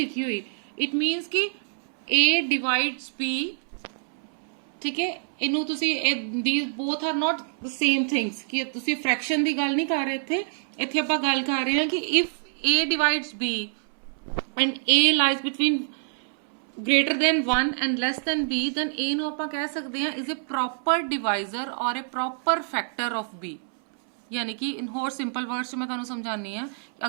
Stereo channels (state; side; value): silent; left; 61 dB below the other